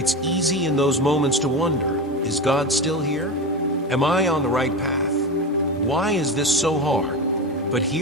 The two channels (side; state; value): both; normal; correlation 0.22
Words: easy in those moments to wonder, is God still here? Am I on the right path? Why is this so hard? But